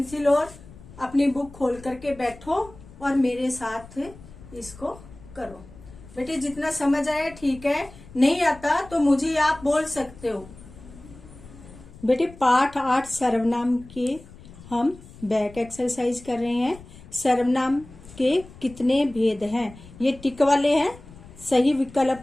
और अपनी बुक खोल करके बैठो और मेरे साथ इसको करो। बेटे जितना समझ आया ठीक है, नहीं आता तो मुझे आप बोल सकते हो। बेटे पाठ 8 सर्वनाम के हम बैक एक्सरसाइज कर रहे हैं। सर्वनाम के कितने भेद हैं, ये टिक वाले हैं, सही विकल्प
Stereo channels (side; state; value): left; noise; rumble, 19 dB below the sound